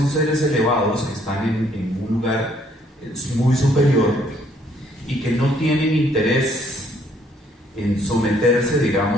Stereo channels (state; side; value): normal; both; correlation 0.65